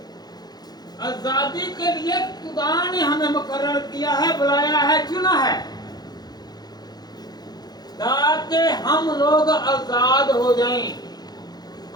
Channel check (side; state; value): right; late; 0.19 ms